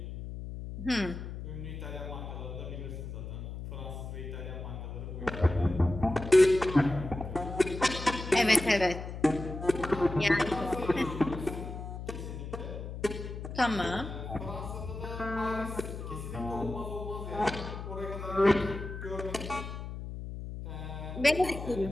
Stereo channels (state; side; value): noise; left; hum, 8 dB below the sound